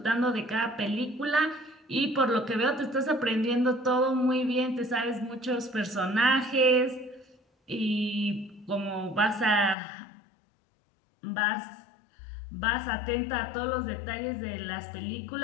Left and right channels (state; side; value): drops out; right; at 9.8 s